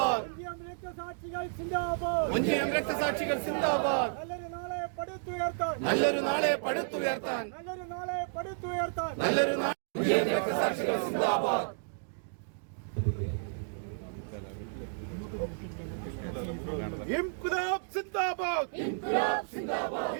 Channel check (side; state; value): left; silent; digital silence